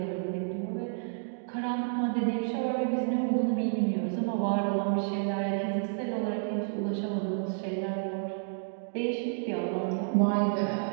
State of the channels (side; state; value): left; silent; digital silence